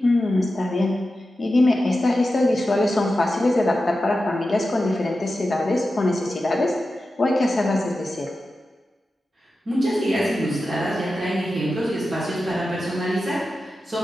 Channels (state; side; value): normal; both; correlation 0.92